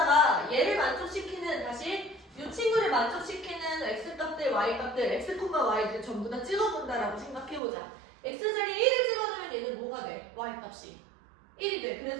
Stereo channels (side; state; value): left; drops out; at 7.6 s